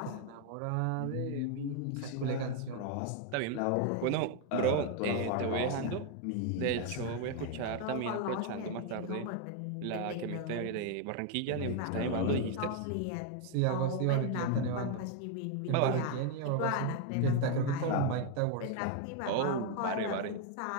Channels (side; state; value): both; different; correlation 0.01